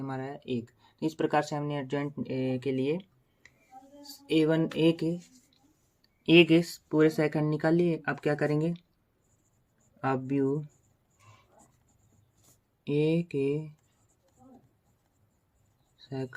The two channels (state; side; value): identical; both; correlation 1.00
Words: है 1। तो इस प्रकार से हमने एडजॉइंट के लिए A1 ए के पूरे सेकंड निकाल लिए। अब क्या करेंगे, अब व्यू ए के